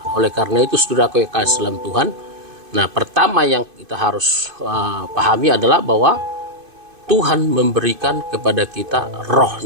Oleh karena itu saudaraku yang kasih dalam Tuhan, nah, pertama yang kita harus pahami adalah bahwa Tuhan memberikan kepada kita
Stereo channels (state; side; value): late; left; 2.5 ms